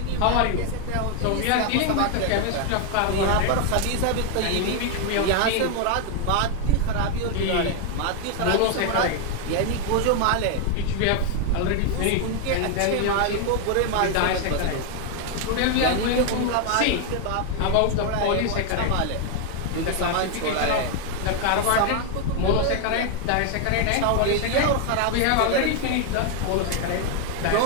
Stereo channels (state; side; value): different; both; correlation 0.01